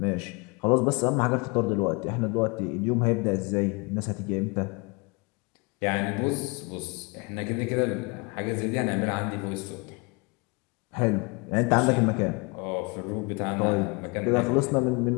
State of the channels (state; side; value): quieter; right; 29.6 dB